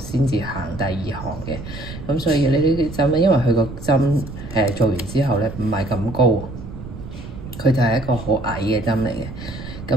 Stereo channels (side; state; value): right; noise; rumble, 11 dB below the sound